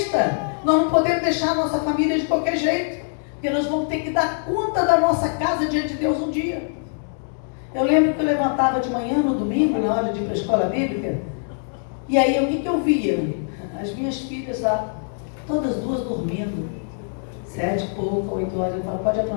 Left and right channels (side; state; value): right; silent; digital silence